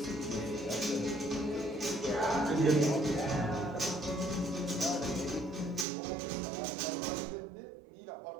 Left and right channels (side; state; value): left; drops out; at 5.9 s